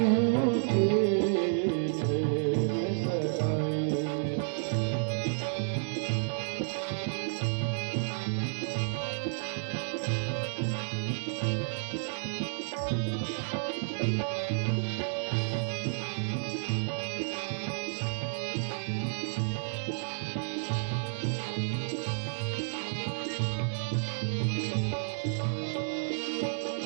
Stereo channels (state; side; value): silent; left; digital silence